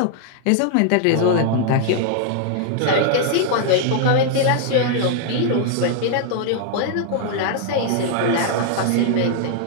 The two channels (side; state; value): both; different; correlation -0.01